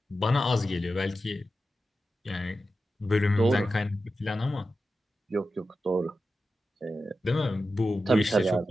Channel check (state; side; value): normal; both; correlation 0.91